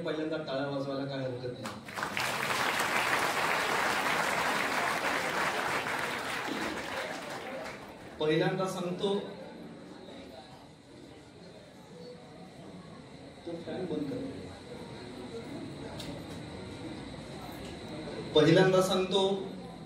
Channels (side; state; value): both; identical; correlation 1.00